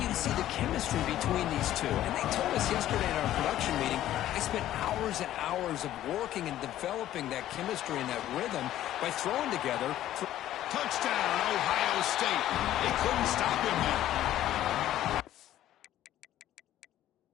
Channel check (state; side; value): quieter; right; 13.0 dB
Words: to see the chemistry between these two. And they told us yesterday in our production meeting, they spent hours and hours of working and developing that chemistry and that rhythm by throwing together. Touchdown, Ohio State. They couldn't stop him there.